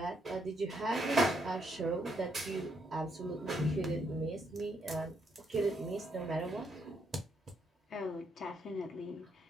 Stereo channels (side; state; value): both; normal; correlation 0.75